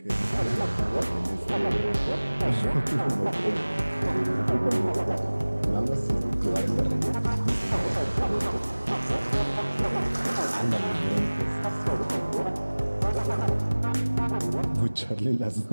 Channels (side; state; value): both; inverted; correlation -1.00